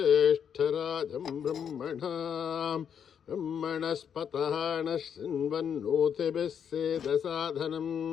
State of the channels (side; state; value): right; quieter; 7.9 dB